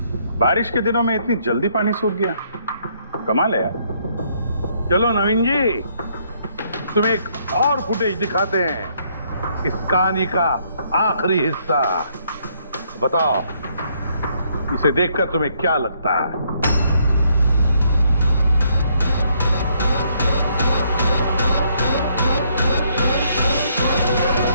बारिश के दिनों में इतनी जल्दी पानी सूख गया, कमाल है यार। चलो नवीन जी, तुम्हें एक और फुटेज दिखाते हैं, इस कहानी का आखिरी हिस्सा। बताओ इसे देखकर तुम्हें क्या लगता है?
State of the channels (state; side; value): inverted; both; correlation -0.70